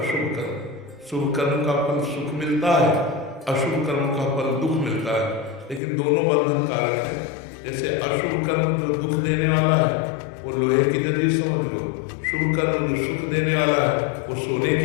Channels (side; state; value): right; drops out; at 5.8 s